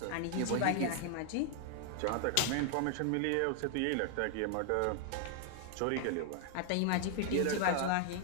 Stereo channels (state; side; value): different; both; correlation 0.00